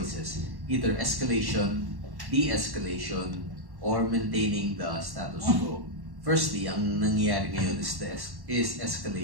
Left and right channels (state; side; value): late; left; 1.1 ms